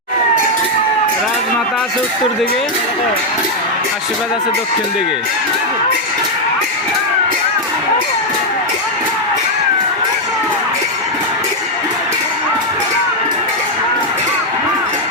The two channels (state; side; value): normal; both; correlation 0.01